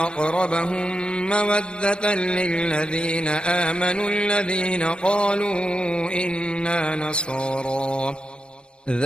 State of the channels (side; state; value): right; late; 0.053 ms